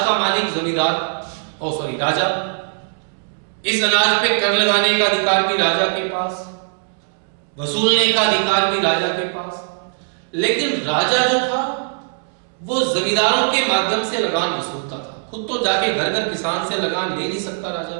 मालिक जमींदार राजा। इस अनाज पे कर लगाने का अधिकार भी राजा के पास, वसूलने का अधिकार भी राजा के पास। लेकिन राजा जो था वो जमींदारों के माध्यम से लगान वसूलता था, खुद तो जाके घर घर किसान से लगान ले नहीं सकता राजा,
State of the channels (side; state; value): left; silent; digital silence